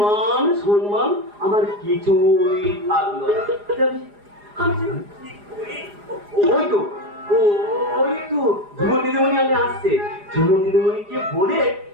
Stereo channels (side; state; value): left; late; 4.9 ms